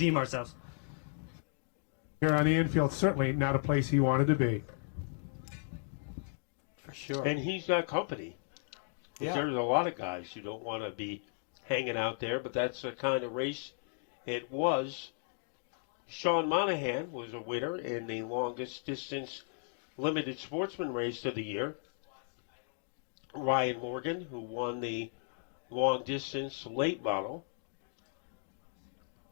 ourselves. Here on the infield, certainly not a place he wanted to be. for sure. And he's got company. Yeah. There's a lot of guys who don't want to be hanging out there, but that's the kind of race it was. Sean Monahan was a winner in the longest distance limited sportsman race of the year. Ryan Morgan, who won the long distance late model.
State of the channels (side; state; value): right; silent; digital silence